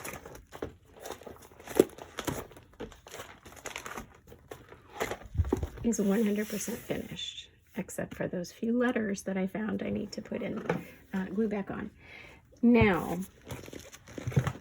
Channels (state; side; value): identical; both; correlation 1.00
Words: is 100% finished, except for those few letters that I found I need to put in glue back on. Now,